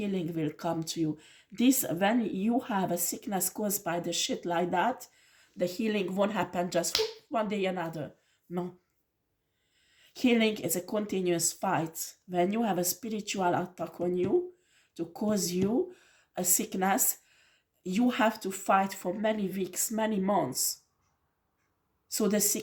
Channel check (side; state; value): both; identical; correlation 1.00